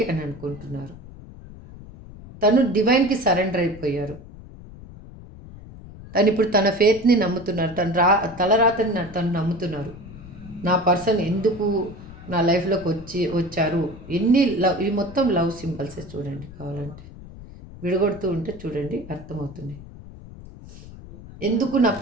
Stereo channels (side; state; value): left; noise; rumble, 16 dB below the sound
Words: అని అనుకుంటున్నారు. తను డివైన్కి సరెండర్ అయిపోయారు. తను ఇప్పుడు తన ఫేత్ని నమ్ముతున్నారు, తలరాతని తను నమ్ముతున్నారు. నా పర్సన్ ఎందుకు నా లైఫ్లోకి వచ్చారు. ఎన్ని లవ్, ఈ మొత్తం లవ్ సింబల్సే చూడండి, కావాలంటే విడగొడుతూ ఉంటే చూడండి అర్థమవుతుంది. ఎందుకు నా